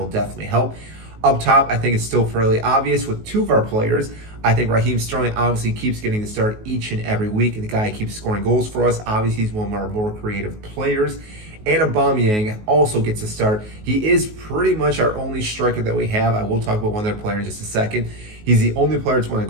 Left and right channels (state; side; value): late; left; 19 ms